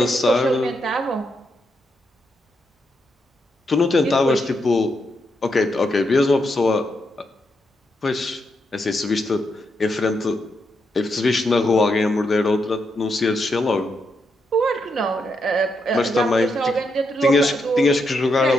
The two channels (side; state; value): both; normal; correlation 0.81